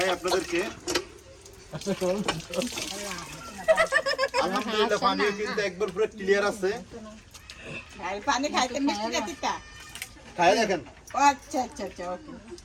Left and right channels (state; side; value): identical; both; correlation 1.00